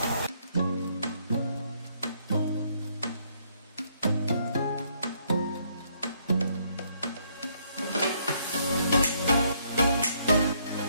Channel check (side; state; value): both; inverted; correlation -0.70